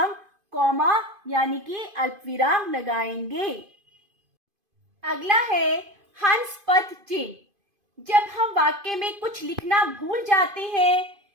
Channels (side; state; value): left; late; 2.5 ms